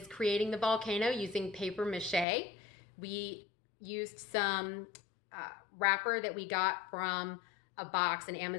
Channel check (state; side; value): drops out; right; at 2.2 s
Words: creating the volcano using paper mache. We used some wrapper that we got from a box, an